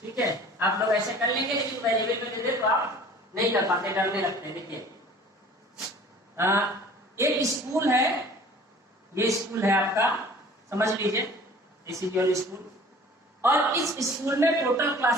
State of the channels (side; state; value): both; normal; correlation 0.47